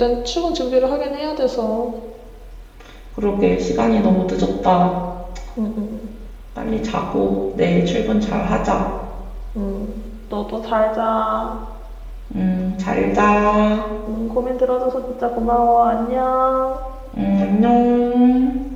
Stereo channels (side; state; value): both; identical; correlation 1.00